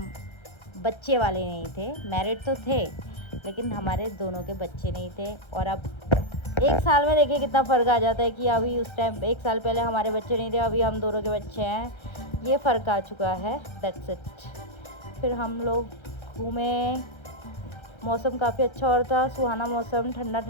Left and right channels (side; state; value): right; late; 1.3 ms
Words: बच्चे वाले नहीं थे, मैरिड तो थे लेकिन हमारे दोनों के बच्चे नहीं थे। और अब 1 साल में देखिए कितना फ़र्क आ जाता है कि अभी उस टाइम 1 साल पहले हमारे बच्चे नहीं थे, अभी हम दोनों के बच्चे हैं, ये फ़र्क आ चुका है, दैट्स इट। फिर हम लोग घूमे, मौसम काफ़ी अच्छा हो रहा था, सुहाना मौसम, ठंडा